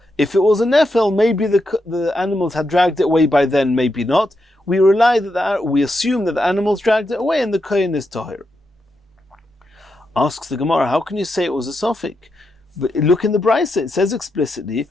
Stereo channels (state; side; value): normal; both; correlation 0.84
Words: If it was a Nefel, maybe the animals had dragged it away by then, maybe not. We assume that the animals dragged it away and the Kohen is Tahir. Asks the Gemara, how can you say it was a Sofik? But look in the Brisa, it says explicitly,